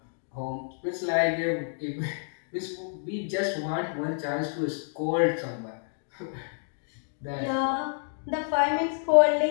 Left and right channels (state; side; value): silent; right; digital silence